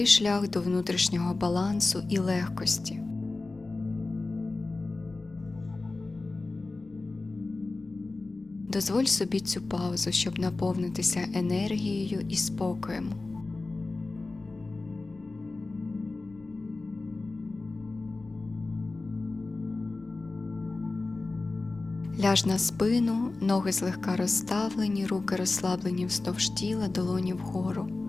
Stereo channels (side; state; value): right; quieter; 3.4 dB